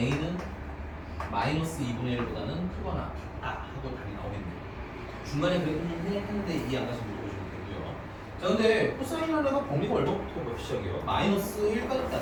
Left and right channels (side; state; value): both; identical; correlation 1.00